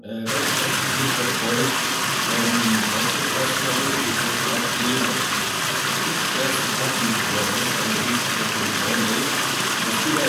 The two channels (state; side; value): identical; both; correlation 1.00